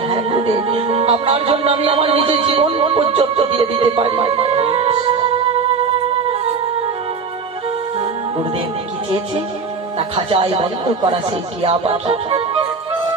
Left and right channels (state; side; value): quieter; left; 5.0 dB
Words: হ্যাঁ গুরুদেব আপনার জন্য আমি আমার নিজের জীবন পর্যন্ত দিয়ে দিতে পারি গুরুদেব কি চেয়েছে তা খাঁচায় বন্ধ করা সেই টিয়া পাখি